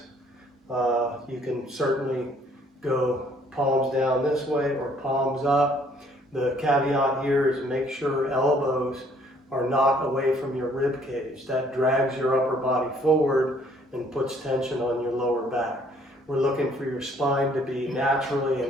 You can certainly go palms down this way or palms up. The caveat here is make sure elbows are not away from your rib cage. That drags your upper body forward and puts tension on your lower back. We're looking for your spine to be naturally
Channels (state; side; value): normal; both; correlation 0.62